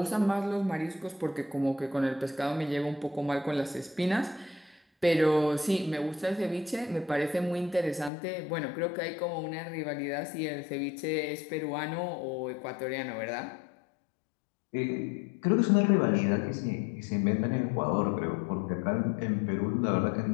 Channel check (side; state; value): right; drops out; at 8.1 s